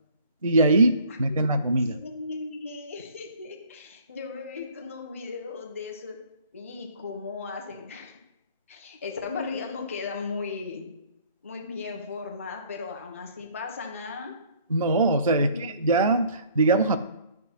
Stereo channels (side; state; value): both; inverted; correlation -0.55